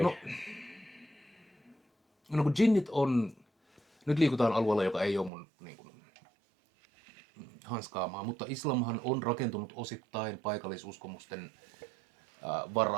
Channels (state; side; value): drops out; left; at 5.3 s